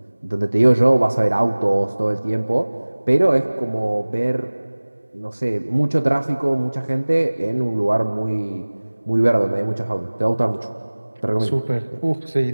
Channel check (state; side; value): inverted; both; correlation -1.00